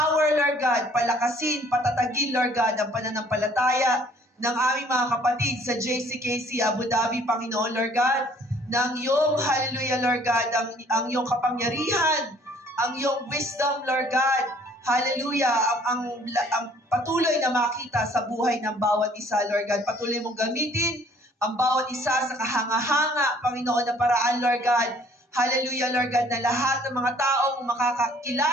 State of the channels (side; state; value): both; normal; correlation 0.58